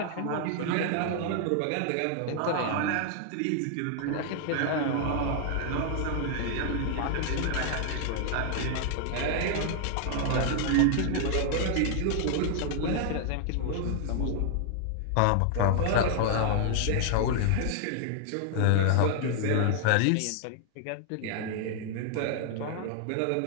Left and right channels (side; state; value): both; different; correlation 0.00